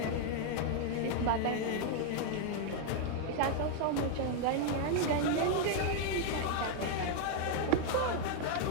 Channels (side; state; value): both; different; correlation 0.00